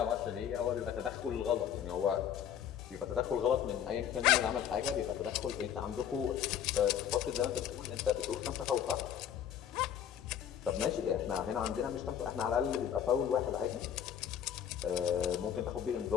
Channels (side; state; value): right; quieter; 9.3 dB